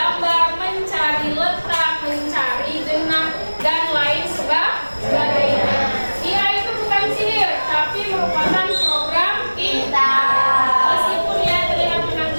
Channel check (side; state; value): both; inverted; correlation -1.00